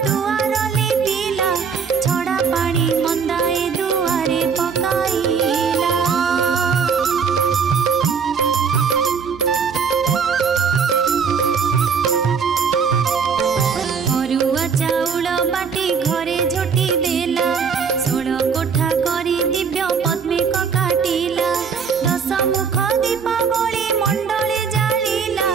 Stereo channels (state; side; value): quieter; left; 6.1 dB